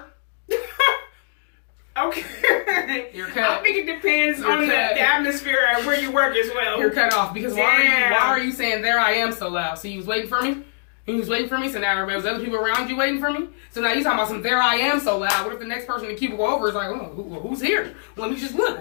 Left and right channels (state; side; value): silent; right; digital silence